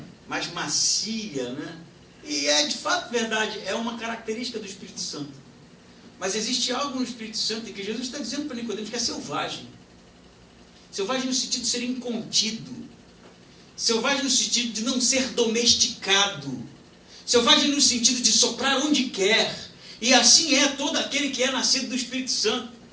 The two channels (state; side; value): identical; both; correlation 1.00